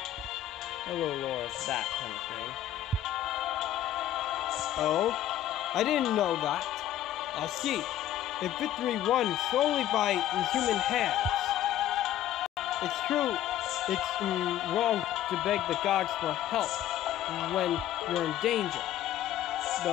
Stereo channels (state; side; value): quieter; right; 12.0 dB